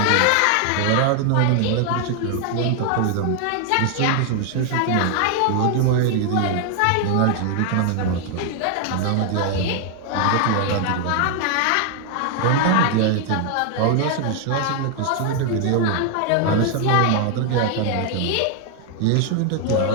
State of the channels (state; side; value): different; both; correlation 0.00